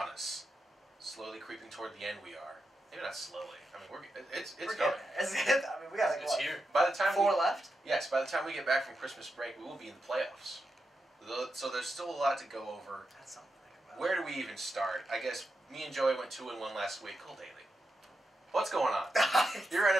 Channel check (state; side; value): normal; both; correlation 0.87